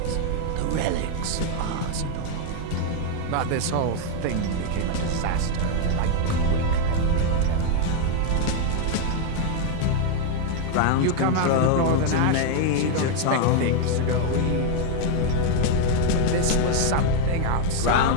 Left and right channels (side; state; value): both; different; correlation 0.00